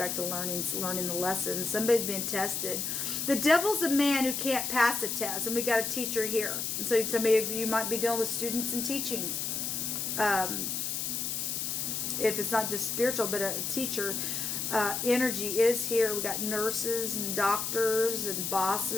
to learning the lessons. Somebody's being tested. The Devil's a man who can't pass a test, and we got a teacher here. And so somebody of you might be dealing with students and teaching. If it's not just spiritual, but a teacher. Energy is here. We got nurses and doctors and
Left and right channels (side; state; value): left; noise; hiss, 2 dB below the sound